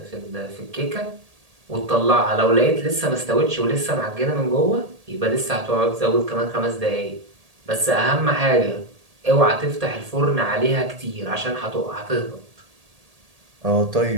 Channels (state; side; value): late; left; 1.8 ms